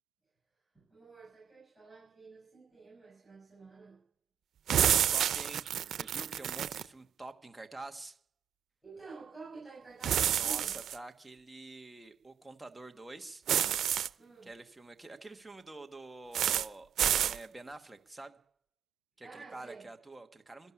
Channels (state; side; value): quieter; left; 9.2 dB